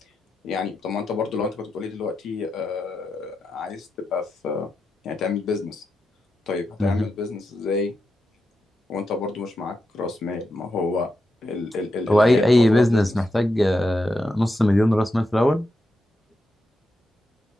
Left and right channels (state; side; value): normal; both; correlation 0.86